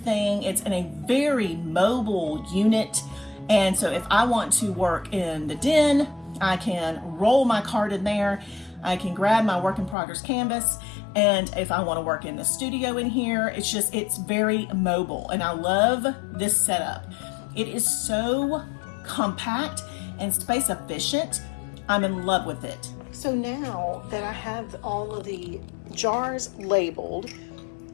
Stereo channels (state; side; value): drops out; right; at 10.0 s